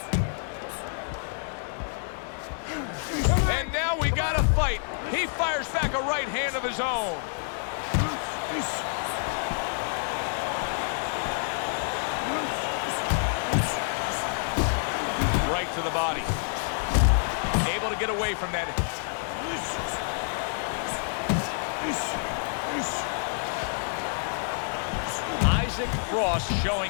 And now we got a fight. He fires back a right hand of his own. Right to the body. Able to get away from that. Isaac Frost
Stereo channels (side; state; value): right; silent; 59 dB below the other